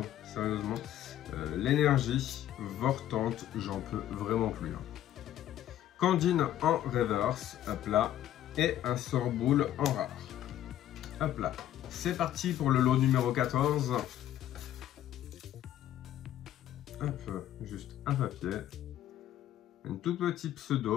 sérieusement. L'énergie, Vortante, j'en peux vraiment plus. Candine en reverse, hop là, et un Sorboule en rare. Hop là. C'est parti pour le lot numéro 14. Hop, juste un papier. Un tout petit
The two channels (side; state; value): right; quieter; 12.1 dB